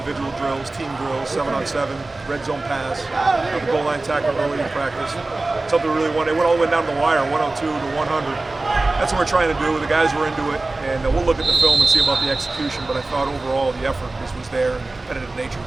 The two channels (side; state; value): left; quieter; 3.2 dB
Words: drills, team drills, 7-on-7, red zone pass, the goal line tackle early in practice. Something we really wanted. It went all the way down to the wire, 102 to 100. That's what we're trying to do. The guys were into it, and we'll look at the film and see about the execution. But I thought overall the effort was there, and the competitive nature